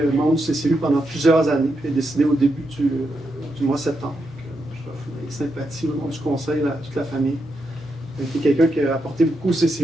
membre du CCU pendant plusieurs années, puis est décédé au début du mois de septembre. Je offre mes sympathies au nom du conseil à toute la famille. C'était quelqu'un qui a apporté beaucoup au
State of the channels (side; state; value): both; normal; correlation 0.84